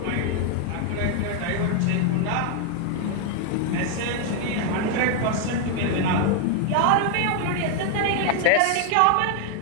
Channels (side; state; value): both; different; correlation 0.00